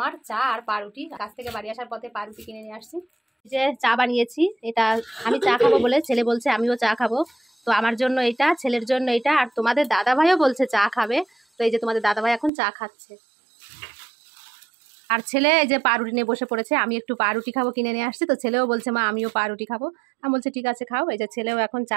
চা আর পাউরুটি। কাছ থেকে বাড়ি আসার পথে পাউরুটি কিনে নিয়ে আসছি। যে চা বানিয়েছি, এটা আমি চা খাবো বলে ছেলে বলছে আমিও চা খাবো। তো আমার জন্য এটা, ছেলের জন্য এটা, আর তোমাদের দাদা ভাইও বলছে চা খাবে। তো এই যে তোমাদের দাদা ভাই এখন চা খাচ্ছে, আর ছেলে এই যে পাউরুটি নিয়ে বসে পড়েছে। আমি একটু পাউরুটি খাবো কিনে নিয়ে আসছি, তো ছেলেও বলছে মা আমিও পাউরুটি খাবো। আমি বলছি ঠিক আছে খাও। এই যে ছেলেও এখন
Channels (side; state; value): left; drops out; at 12.5 s